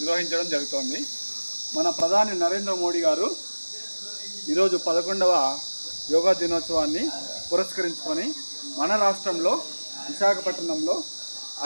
జరుగుతోంది. మన ప్రధాని నరేంద్ర మోడీ గారు ఈరోజు 11వ యోగా దినోత్సవాన్ని పురస్కరించుకొని మన రాష్ట్రంలో విశాఖపట్నంలో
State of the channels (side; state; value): both; inverted; correlation -1.00